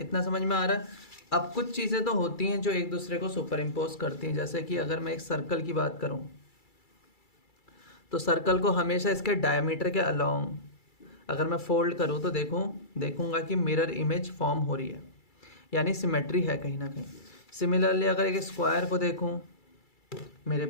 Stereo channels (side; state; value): right; late; 2.3 ms